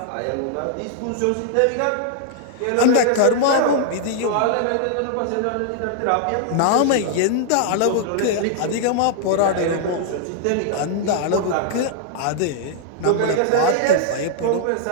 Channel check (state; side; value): different; both; correlation 0.00